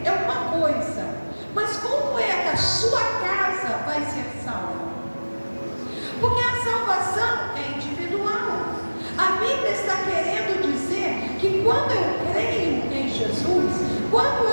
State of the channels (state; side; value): inverted; both; correlation -1.00